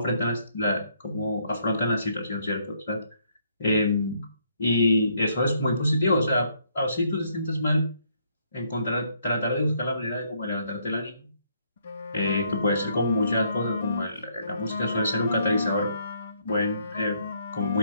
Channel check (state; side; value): inverted; both; correlation -0.70